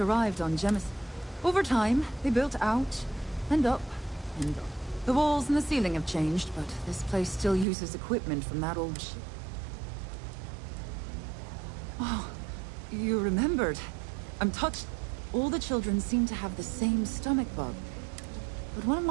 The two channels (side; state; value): left; drops out; at 7.7 s